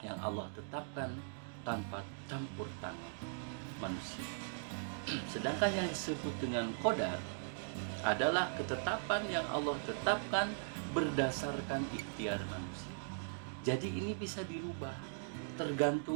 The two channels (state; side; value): silent; left; digital silence